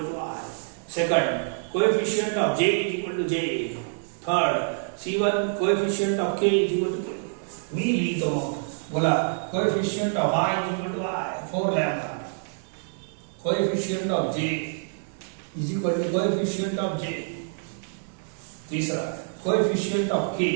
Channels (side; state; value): left; silent; digital silence